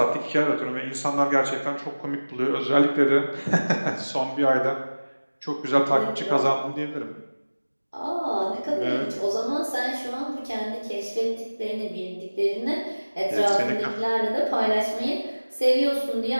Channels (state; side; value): inverted; both; correlation -1.00